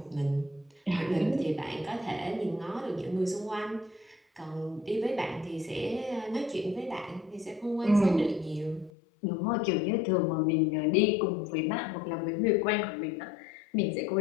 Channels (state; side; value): drops out; right; at 8.9 s